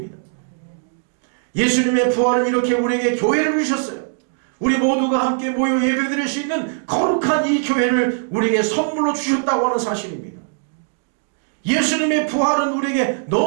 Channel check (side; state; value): left; silent; 66 dB below the other